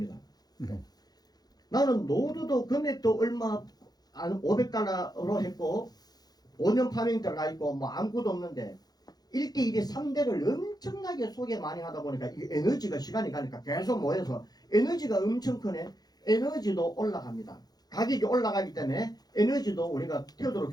나는 노드도 금액도 얼마 한 500달러로 했고 5년 파밍 들어가 있고 뭐 아무것도 없는데 1대1에 3대를 엄청나게 소개 많이 하다 보니까 이 에너지가 시간이 가니까 계속 모여서 에너지가 엄청 크네. 에너지도 올라갑니다. 가격이 올라가기 때문에 에너지도 우리가 태도로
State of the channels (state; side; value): late; right; 0.19 ms